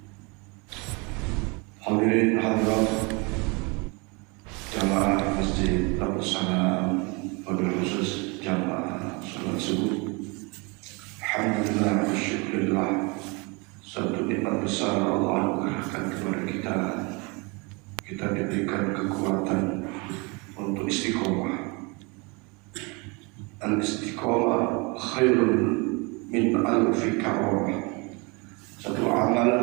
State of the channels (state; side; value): quieter; left; 29.3 dB